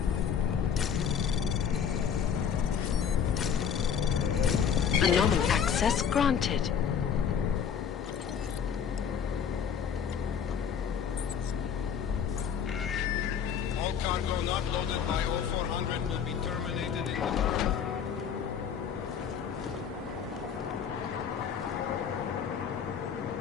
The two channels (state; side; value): quieter; right; 7.5 dB